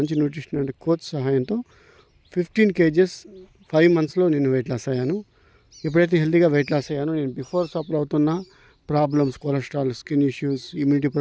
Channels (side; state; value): both; identical; correlation 1.00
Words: న్యూట్రిషన్ అండ్ కోచ్ సహాయంతో 15 kgs 5 monthsలో నేను వెయిట్ లాస్ అయ్యాను. ఎప్పుడైతే హెల్తీగా వెయిట్ లాస్ అయ్యానో నేను బిఫోర్ సఫర్ అవుతున్న problems, cholesterol, skin issues, immunity